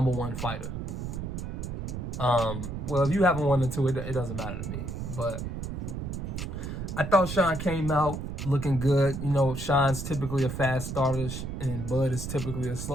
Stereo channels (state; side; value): noise; right; rumble, 5 dB below the sound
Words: fighter. Well, if you haven't won the two, it doesn't matter to me. But I thought Shawn came out looking good. You know, Shawn's typically a fast starter, and Bud is typically a